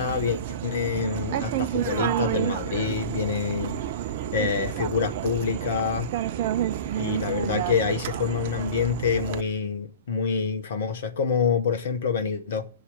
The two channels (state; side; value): inverted; both; correlation -0.35